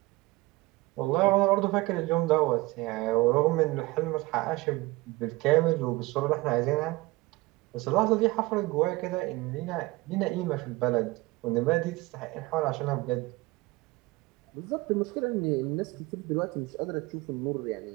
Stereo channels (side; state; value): left; quieter; 21.5 dB